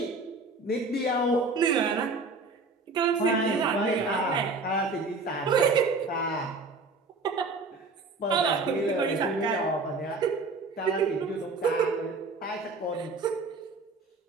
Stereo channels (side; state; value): left; quieter; 3.6 dB